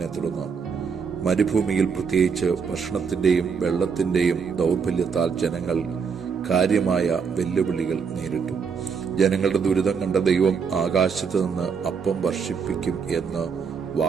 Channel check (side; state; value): left; quieter; 6.0 dB